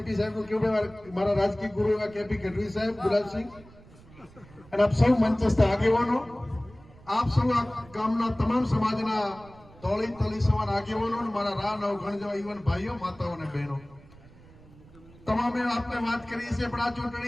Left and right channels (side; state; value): right; noise; rumble, 23 dB below the sound